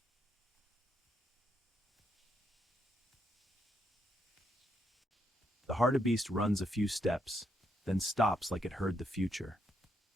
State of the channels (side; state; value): both; normal; correlation 0.77